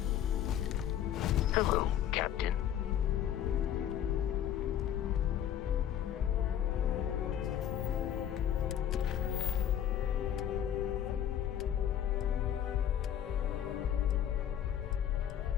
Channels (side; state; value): right; quieter; 10.4 dB